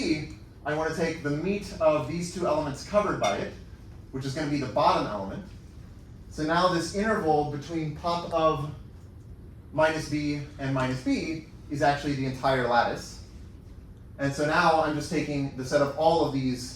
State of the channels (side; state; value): both; identical; correlation 1.00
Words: I want to take the meat of these two elements covered by it, which is going to be the bottom element. So now this interval between pop of minus B and minus B is actually the entire lattice. And so now I'm just taking the set of all of